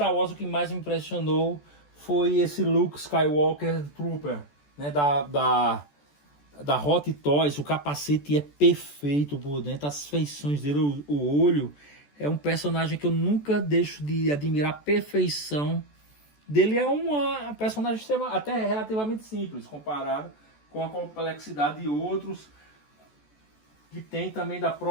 Wars o que mais me impressionou foi esse Luke Skywalker Trooper, né, da Hot Toys. O capacete é perfeito por dentro, as feições dele, o olho. É um personagem que eu nunca deixo de admirar a perfeição dele. É uma personagem até relativamente simples comparado com a complexidade de outros que tem também da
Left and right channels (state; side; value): late; right; 14 ms